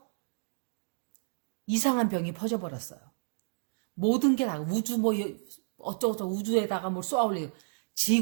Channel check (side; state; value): left; silent; digital silence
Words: 이상한 병이 퍼져버렸어요. 모든 게 다 우주 뭐 어쩌고저쩌고 우주에다가 뭘 쏘아올리고,